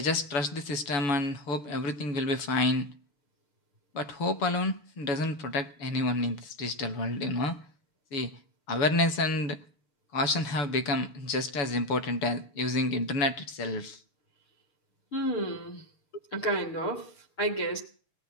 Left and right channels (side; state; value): right; late; 7.0 ms